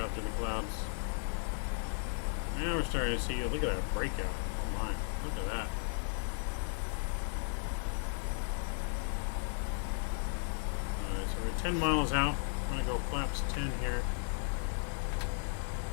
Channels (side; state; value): right; silent; 54 dB below the other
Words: through the clouds. Now we're starting to see, look at that breakout. Oh my, look at that. Alright, so we're 10 miles out. I'm going to go flaps 10 here.